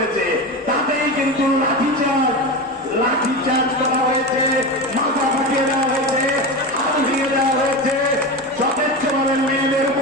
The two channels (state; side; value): normal; both; correlation 0.23